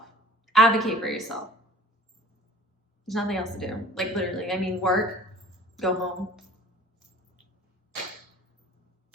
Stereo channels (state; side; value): normal; both; correlation 0.47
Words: Advocate for yourself. There's nothing else to do. Like, literally, I mean, work, go home.